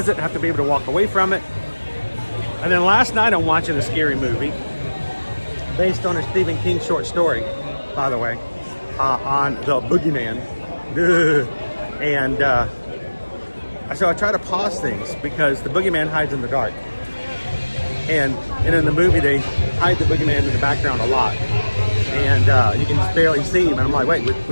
it. I have to be able to walk away from it. And then last night I'm watching a scary movie based on a Stephen King short story, by the way, on the Boogeyman. And so I try to pause things because the Boogeyman hides in the dark. And in the movie, they hide the Boogeyman in the background a lot. And you can just barely see him. And I'm like, wait,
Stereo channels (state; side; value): inverted; both; correlation -1.00